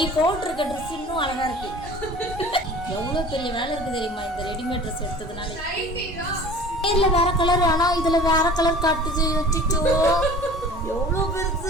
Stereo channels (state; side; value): normal; both; correlation 0.43